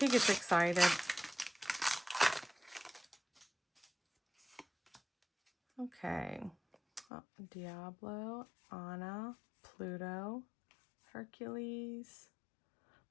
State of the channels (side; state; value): right; drops out; at 7.1 s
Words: gets excited. Okay. Oh, Diablo, Anna, Pluto, Hercules,